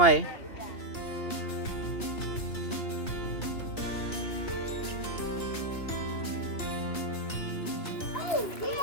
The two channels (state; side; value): late; right; 2.9 ms